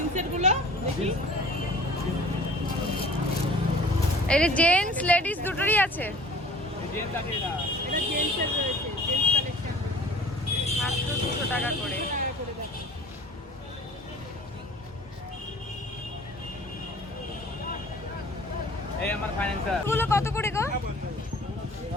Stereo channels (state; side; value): normal; both; correlation 0.47